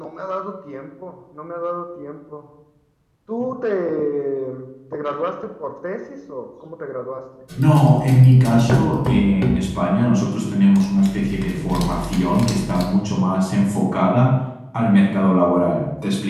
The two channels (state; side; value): identical; both; correlation 1.00